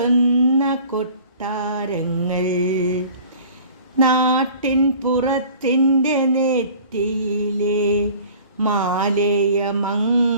കൊട്ടാരങ്ങൾ. നാട്ടിൻ പുറത്തിൻ്റെ നെറ്റിയിലെ മാലയ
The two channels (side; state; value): both; inverted; correlation -0.47